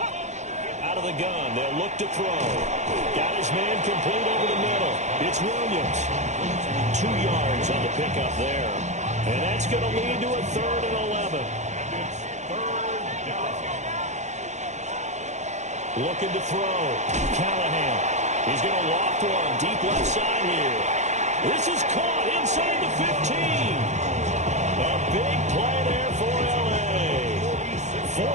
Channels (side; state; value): left; late; 0.34 ms